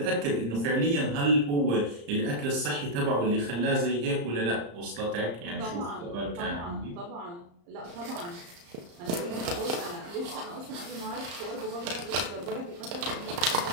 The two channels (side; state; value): left; late; 34 ms